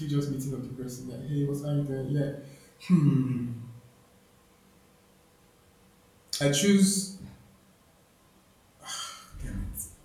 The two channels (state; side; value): identical; both; correlation 1.00